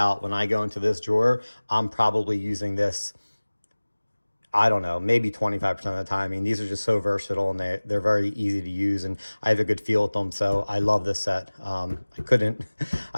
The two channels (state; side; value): inverted; both; correlation -1.00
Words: when I go into this drawer, I'm probably using this, I don't know, maybe 25% of the time. I mean, these are just so versatile, and they're very easy to use, and I have a good feel with them. So I love this set. I couldn't